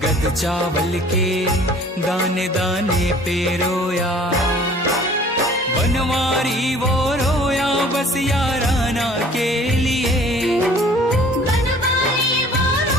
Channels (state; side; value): normal; both; correlation 0.51